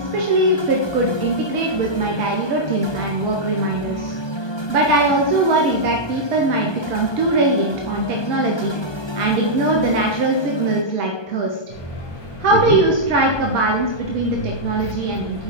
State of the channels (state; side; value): late; right; 1.2 ms